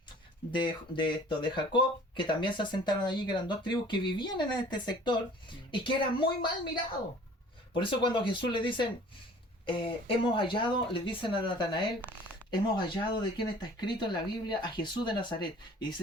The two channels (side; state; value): both; normal; correlation 0.49